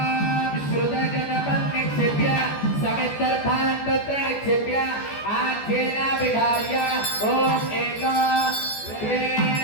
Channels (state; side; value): late; right; 14 ms